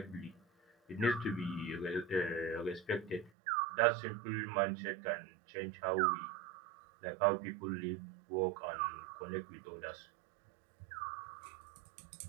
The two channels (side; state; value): left; drops out; at 3.3 s